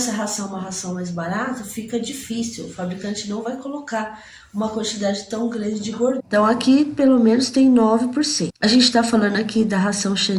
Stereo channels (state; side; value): identical; both; correlation 1.00